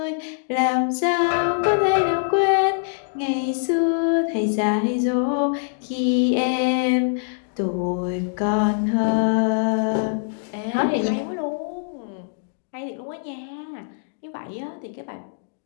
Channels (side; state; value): right; silent; digital silence